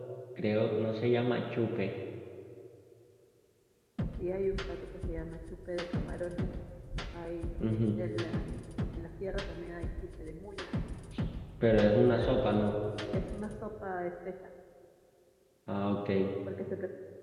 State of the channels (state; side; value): identical; both; correlation 1.00